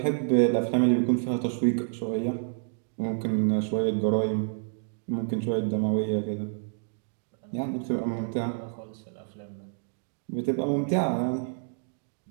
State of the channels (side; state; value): left; silent; digital silence